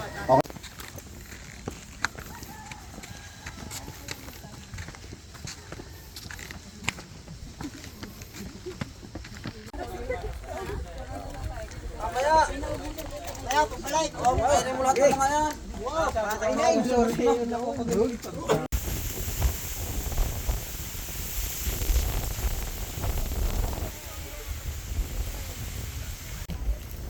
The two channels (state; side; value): identical; both; correlation 1.00